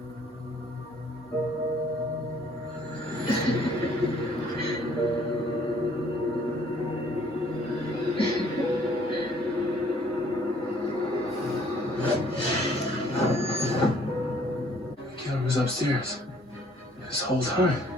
The killer was upstairs this whole time,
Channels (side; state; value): both; normal; correlation 0.60